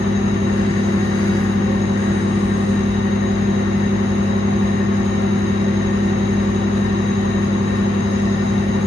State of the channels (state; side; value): normal; both; correlation 0.84